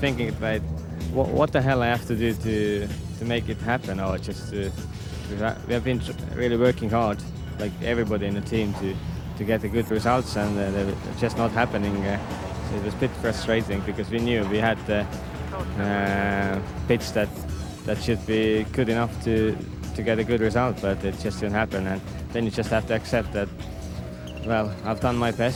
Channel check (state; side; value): identical; both; correlation 1.00